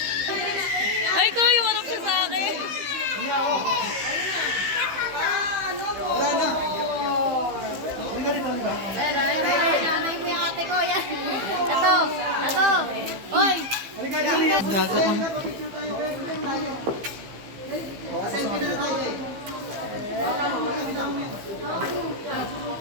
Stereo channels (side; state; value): left; late; 15 ms